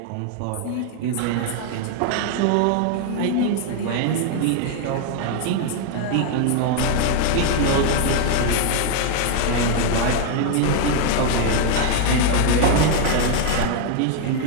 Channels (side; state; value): both; different; correlation 0.01